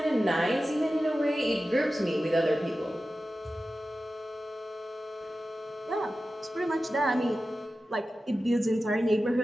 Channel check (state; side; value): normal; both; correlation 0.94